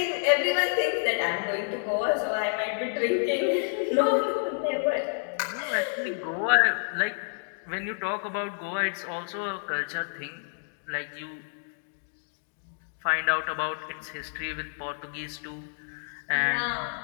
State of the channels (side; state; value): right; silent; digital silence